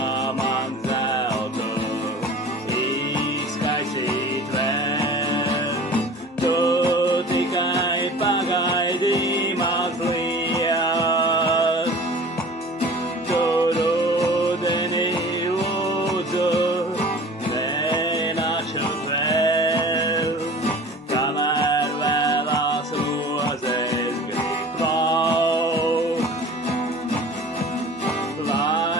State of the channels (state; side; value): normal; both; correlation 0.42